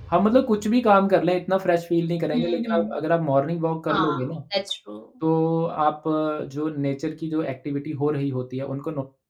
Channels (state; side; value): identical; both; correlation 1.00